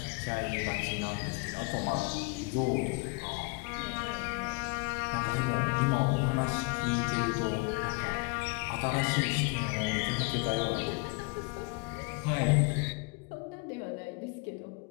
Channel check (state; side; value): quieter; right; 31.3 dB